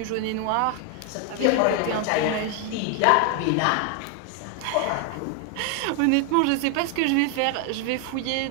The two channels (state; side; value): different; both; correlation 0.01